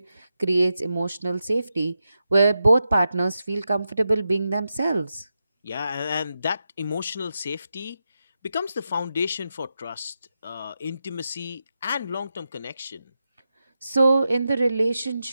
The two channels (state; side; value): inverted; both; correlation -0.88